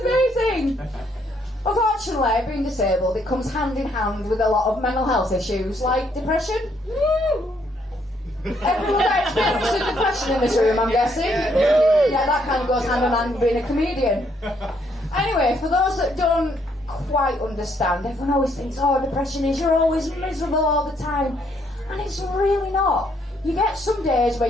Unfortunately, being disabled, it comes hand in hand with a lot of mental health issues, like depression. Everyone experiences depression in this room, I'm guessing. Yeah, that kind of goes hand in hand with being a comedian. Anyway, for those that don't quite understand, everyone always thinks, oh, depression is you're always miserable all the time. And it's really not. You get some days where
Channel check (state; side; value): normal; both; correlation 0.71